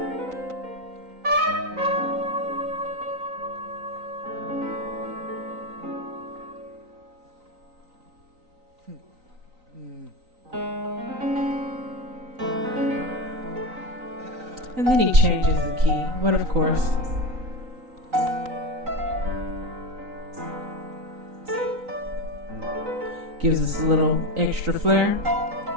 And then he changes the key, but of course. Gives us a little extra flair.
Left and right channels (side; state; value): left; late; 3.9 ms